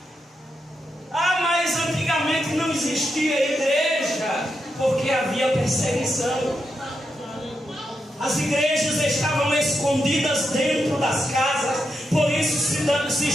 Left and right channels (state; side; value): normal; both; correlation 0.84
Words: Mas antigamente não existia igreja, porque havia perseguição. As igrejas estavam escondidas dentro das casas, por isso se